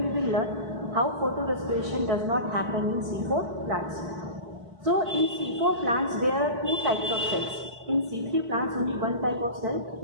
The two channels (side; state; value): left; late; 4.6 ms